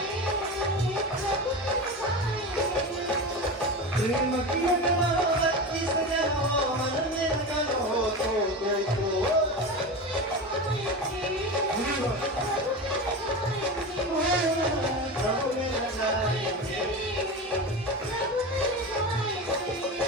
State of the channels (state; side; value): normal; both; correlation 0.25